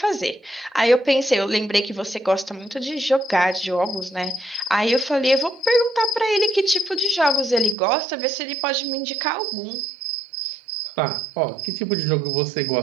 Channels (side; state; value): left; drops out; at 7.8 s